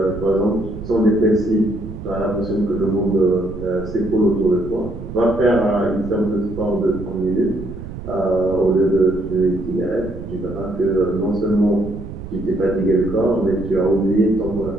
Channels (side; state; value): right; noise; rumble, 11 dB below the sound